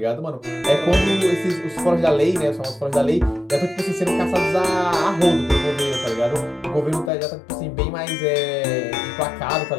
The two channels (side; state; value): right; drops out; at 7.1 s